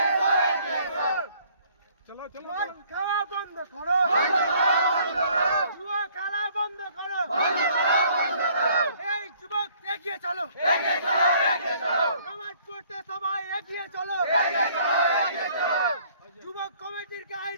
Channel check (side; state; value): both; inverted; correlation -0.60